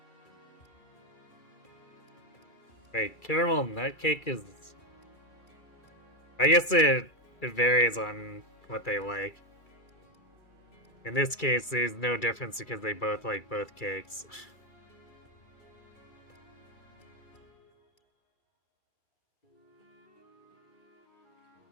Wait, caramel nut cake is... I guess it varies on what they like. In this case, there's no difference because they both like both cakes.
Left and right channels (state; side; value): late; right; 2.3 ms